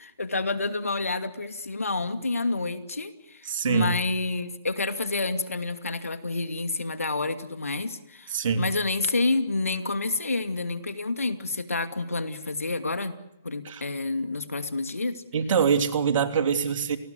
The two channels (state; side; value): inverted; both; correlation -0.64